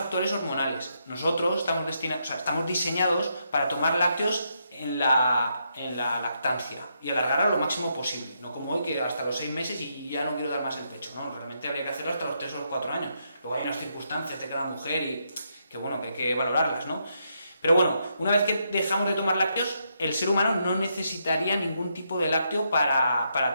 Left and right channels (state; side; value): inverted; both; correlation -0.79